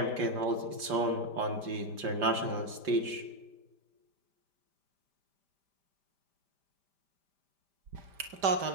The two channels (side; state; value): left; late; 5.0 ms